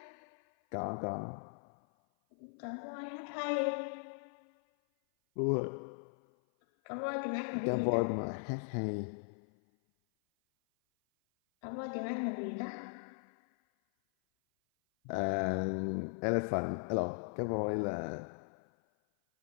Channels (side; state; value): right; silent; 52 dB below the other